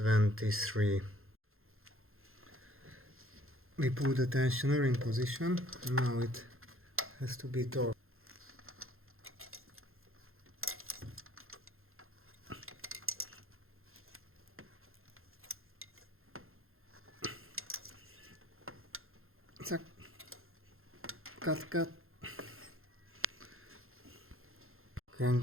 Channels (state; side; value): late; left; 0.61 ms